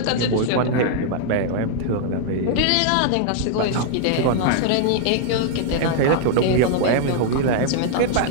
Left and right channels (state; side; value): different; both; correlation -0.01